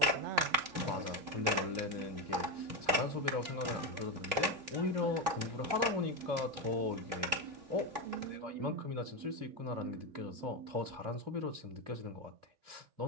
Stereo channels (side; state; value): left; late; 3.2 ms